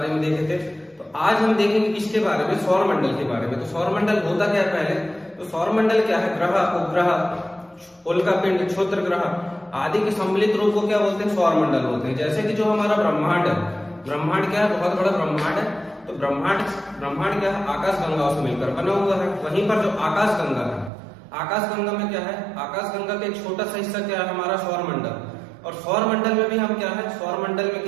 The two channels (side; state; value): left; drops out; at 20.9 s